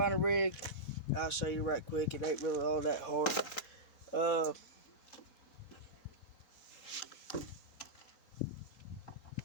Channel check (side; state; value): right; late; 4.1 ms